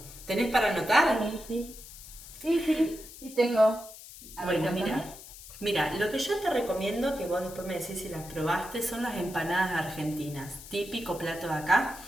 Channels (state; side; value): noise; left; hiss, 16 dB below the sound